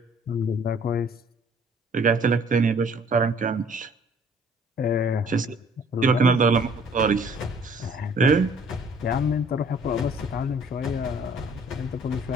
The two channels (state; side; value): normal; both; correlation 0.56